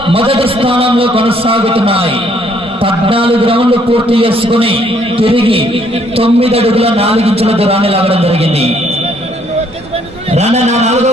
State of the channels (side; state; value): both; normal; correlation 0.66